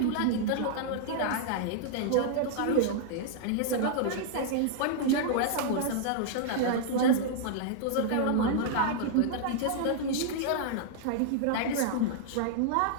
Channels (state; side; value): different; both; correlation -0.01